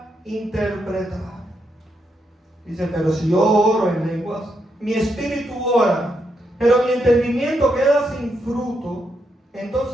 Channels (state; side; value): normal; both; correlation 0.80